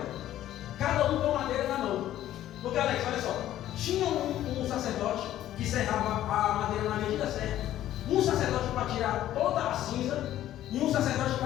Cada um com madeira na mão. Porque, Alex, olha só. Tinha um sacerdote que serrava a madeira na medida certa. Um sacerdote para tirar toda a cinza e um sacerdote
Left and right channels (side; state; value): right; quieter; 12.9 dB